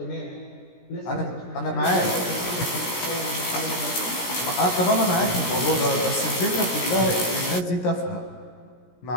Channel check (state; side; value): late; right; 17 ms